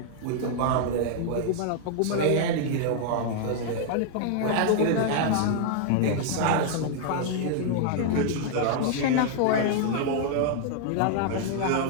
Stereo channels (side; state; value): both; different; correlation -0.01